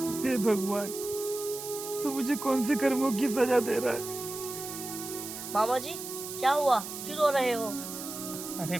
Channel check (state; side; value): noise; right; hiss, 9 dB below the sound